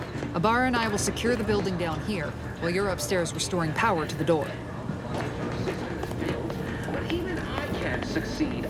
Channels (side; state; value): both; identical; correlation 1.00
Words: Abara and I will secure the building down here, while you're upstairs restoring power to the door. But even I can't succeed